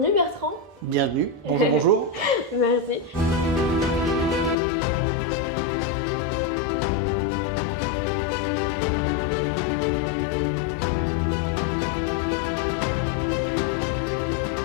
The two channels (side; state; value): right; drops out; at 4.5 s